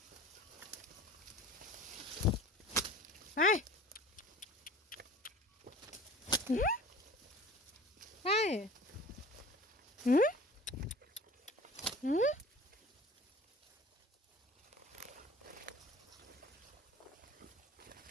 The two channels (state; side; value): normal; both; correlation 0.42